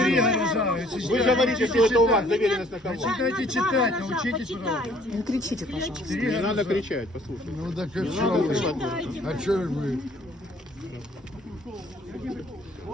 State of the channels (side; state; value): both; normal; correlation 0.59